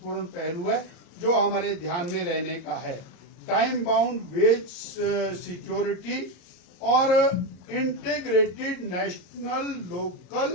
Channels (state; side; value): late; right; 34 ms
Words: पहलू है जो हमारे ध्यान में रहने का है। टाइम बाउंड वेज सिक्योरिटी और इंटीग्रेटेड नेशनल